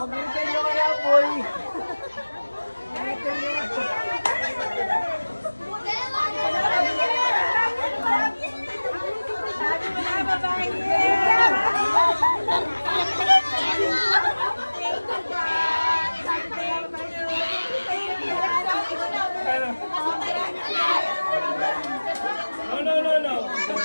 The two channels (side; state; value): both; inverted; correlation -1.00